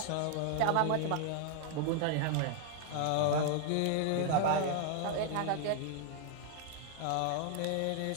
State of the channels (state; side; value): different; both; correlation 0.00